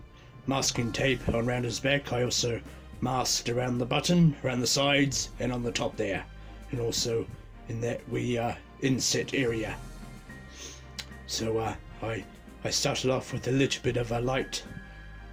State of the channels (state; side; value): identical; both; correlation 1.00